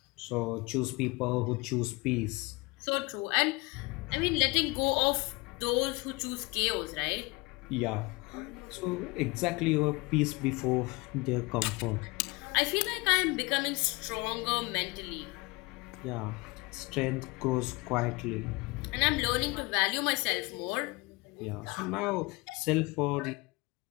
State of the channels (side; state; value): right; quieter; 24.8 dB